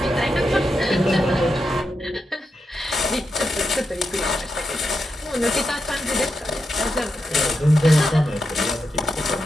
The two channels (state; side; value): normal; both; correlation 0.87